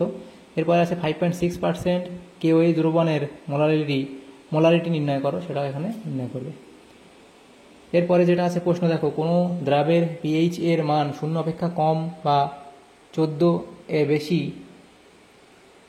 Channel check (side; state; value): both; identical; correlation 1.00